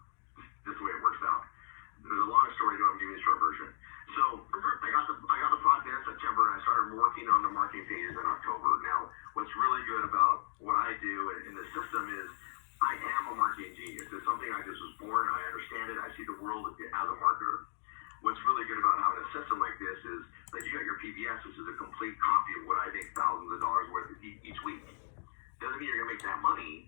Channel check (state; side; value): silent; right; digital silence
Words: This is the way it works out. There's a long story story to it. I'm giving you the short version. So I got the product in September, and I started working on the marketing pages in October. Now, what's really good about what I do in the system is I am a marketing genius. It's something I just was born. I understand it. I see the world as a marketer. What's really good about having a system like this is that you got your PBS, which is a complete copy of what I make thousands of dollars worth each week. Doesn't mean you're gonna make that